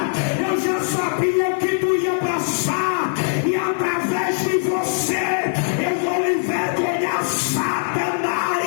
Eu já sabia o que tu ia passar. E através de você eu vou envergonhar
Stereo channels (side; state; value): right; silent; digital silence